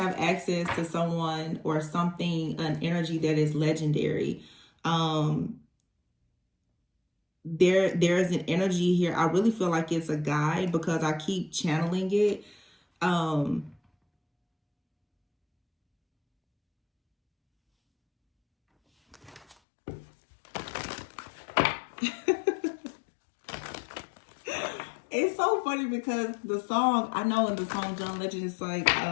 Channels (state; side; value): drops out; right; at 19.6 s